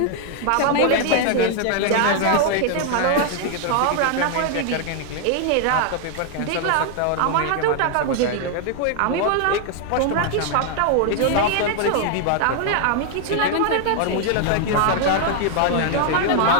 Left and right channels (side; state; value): both; different; correlation 0.00